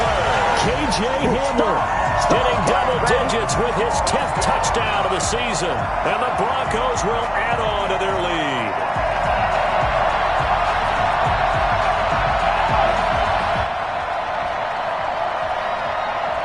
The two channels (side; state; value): both; identical; correlation 1.00